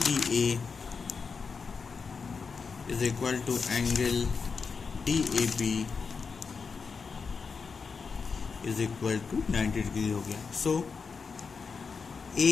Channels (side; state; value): right; quieter; 5.3 dB